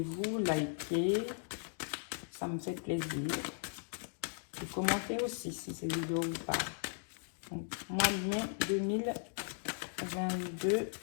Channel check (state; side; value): silent; right; digital silence